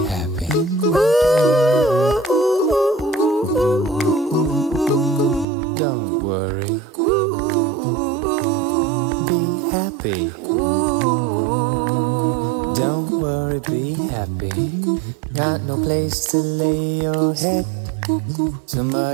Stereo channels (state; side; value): drops out; left; at 5.5 s